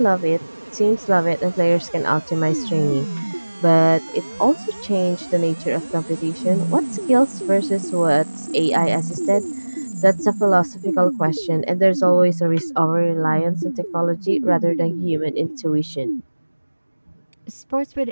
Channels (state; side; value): inverted; both; correlation -1.00